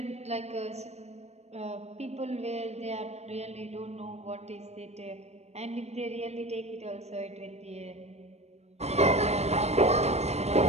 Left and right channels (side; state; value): left; late; 0.31 ms